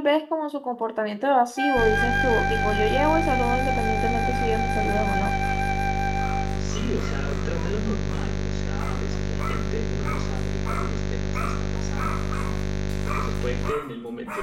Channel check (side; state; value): both; identical; correlation 1.00